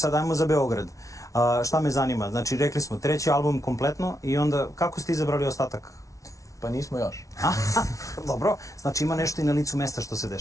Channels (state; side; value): late; right; 0.16 ms